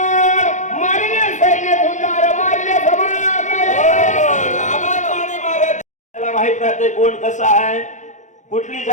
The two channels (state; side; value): late; right; 0.35 ms